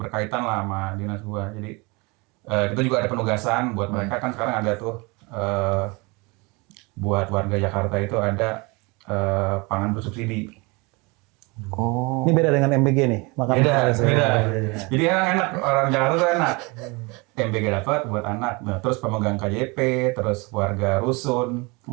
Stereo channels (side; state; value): left; quieter; 27.2 dB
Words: lah sama dinas gua. Jadi kita juga ada penugasan buat mereka kan sekarang ada tuh buat warga Jakarta itu ada pangan bersubsidi. Oh. Ini beda dengan MBG nih, makanan Beda, harus. beda. Jadi enak, orang Jakarta tuh enak. MBG dapat buat anak. Nah, terus pemegang KJP, terus warga rusun,